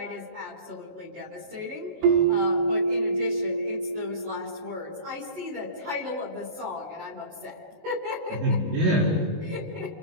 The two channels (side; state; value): left; late; 19 ms